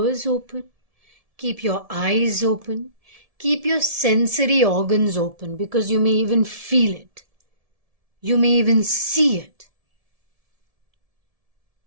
open, keep your eyes open, keep your sensory organs open, because you may even feel it, you may even see it.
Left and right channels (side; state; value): left; late; 1.7 ms